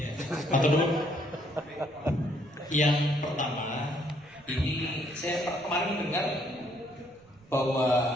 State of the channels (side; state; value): right; noise; rumble, 29 dB below the sound